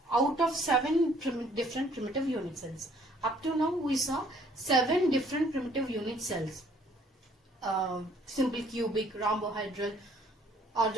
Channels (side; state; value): both; normal; correlation 0.61